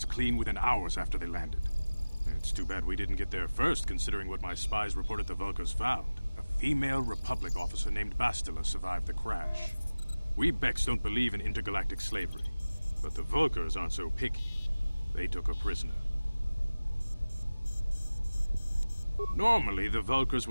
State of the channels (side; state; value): both; inverted; correlation -0.99